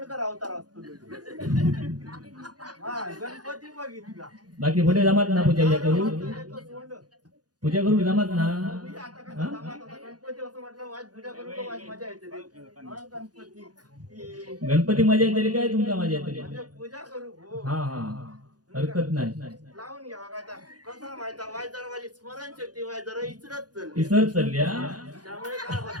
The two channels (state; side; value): late; left; 0.69 ms